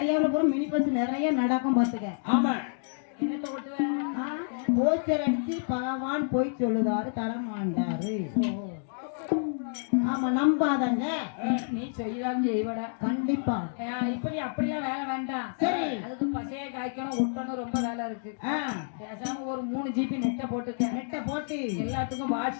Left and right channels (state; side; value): silent; right; digital silence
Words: பூரா மினி பஸ் நிறைய நடக்கும் பாத்துக்க. ஆமா, என்னத்த ஓட்டுவ? போஸ்டர் அடிச்சு பகவான் போய் சொல்லுதாரு தரமாண்டாரு. ஆமா, நம்பாதங்க. நீ செய்யலாம் செய்வடா கண்டிப்பா. இப்ப நீ அப்படிலாம் வேலை வேண்டாம். சரி, அதுக்கு பசைய காய்க்கணும், ஒட்டணும், ரொம்ப வேலை இருக்கு. பேசாம ஒரு 3 GB நெட்டை போட்டுக்க. நெட்டை போட்டு எல்லாத்துக்கும்